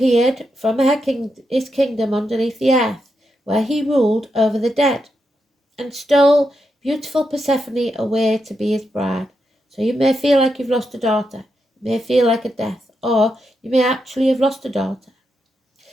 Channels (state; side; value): normal; both; correlation 0.84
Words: from his kingdom underneath the earth, where he ruled over the dead, and stole beautiful Persephone away to be his bride. So you may feel like you've lost a daughter, it may feel like a death, or you may actually have lost a daughter.